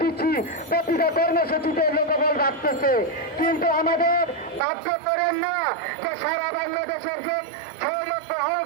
দিচ্ছি প্রতিটা কর্মসূচিতে লোকবল রাখতেছে, কিন্তু আমাদের বাধ্য করেন না যে সারা বাংলাদেশের যে 6 লক্ষ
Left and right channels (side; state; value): left; drops out; at 4.6 s